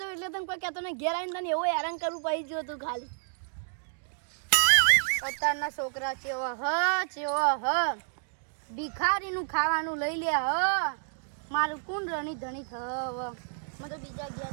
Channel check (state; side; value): silent; left; digital silence